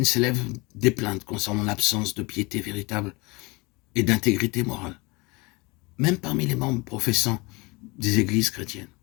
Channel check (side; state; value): right; quieter; 25.6 dB